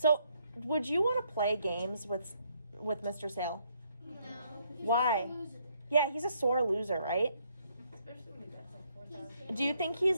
would you want to play games with Mr. Sale?" No. Why? Yeah, he's a sore loser, right? Especially when he bets like 4,000. Do you think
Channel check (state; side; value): inverted; both; correlation -0.71